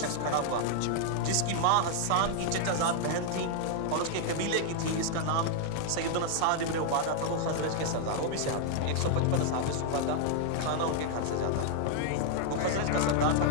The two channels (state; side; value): different; both; correlation 0.00